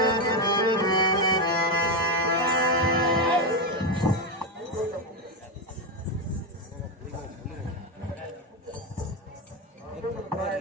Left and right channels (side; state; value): both; normal; correlation 0.10